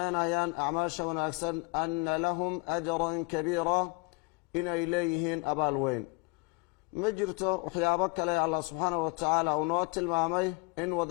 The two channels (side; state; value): right; quieter; 26.8 dB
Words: acmaasha wanaagsan ana lahum ajran kabiira inay leeyihiin abaal weyn ma jirto waxyaabo kale allah subxaanahu watacaala uu noo tilmaamay in